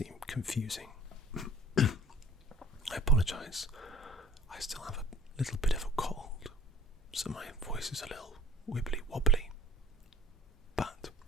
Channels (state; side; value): normal; both; correlation 0.47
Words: confusing. I apologise, I still have a little bit of a cold, so my voice is a little wibbly wobbly. But